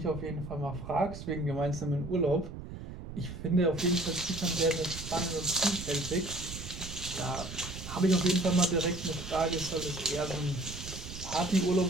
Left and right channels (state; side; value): noise; right; rumble, 10 dB below the sound